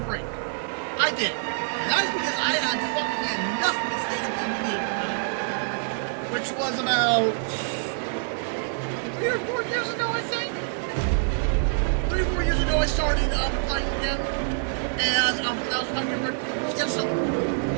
I did. And that was because I had fucking enough to stay in DVD at the time. Which was about 3 or 4 years ago, I think. 3 or 4 years ago I started playing again. And that was 5 year break. Yeah, so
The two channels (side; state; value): left; silent; digital silence